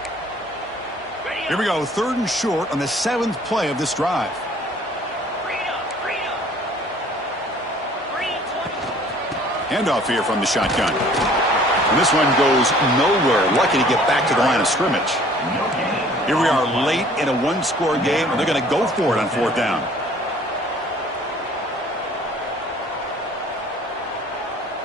Here we go, 3rd and short on the 7th play of this drive. Handoff here from the shotgun. And this one goes nowhere. Lucky to get back to the line of scrimmage. Here we are late in a one-score game, and they're going to go for it on 4th down.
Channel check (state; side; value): normal; both; correlation 0.54